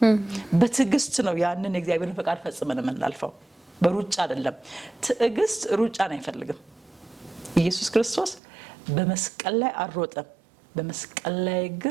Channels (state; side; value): drops out; left; at 8.4 s